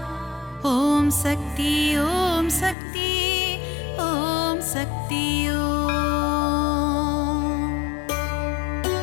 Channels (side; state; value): right; drops out; at 2.8 s